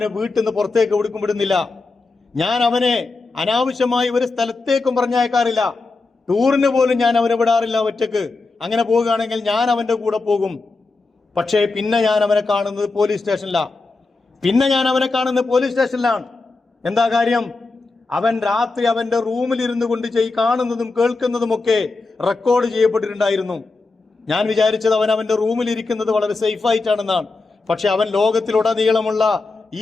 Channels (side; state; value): right; quieter; 3.7 dB